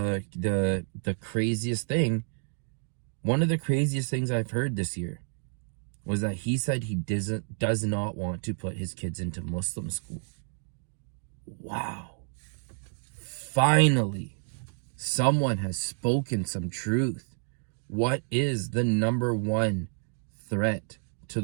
craziest thing. One of the craziest things I've heard this year was that he said he does not want to put his kids into Muslim school. Wow. Finally, someone has spoken some truth. What is the number one threat to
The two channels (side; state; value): left; silent; 58 dB below the other